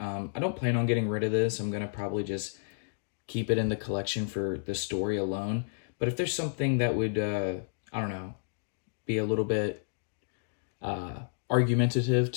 don't plan on getting rid of this. I'm going to probably just keep it in the collection for the story alone. But if there's something that would, I don't know, be a little bit argumentative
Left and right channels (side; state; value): right; silent; digital silence